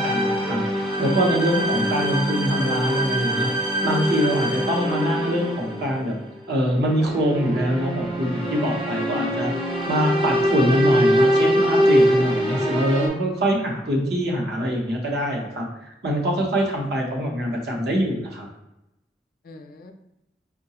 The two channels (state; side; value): normal; both; correlation 0.67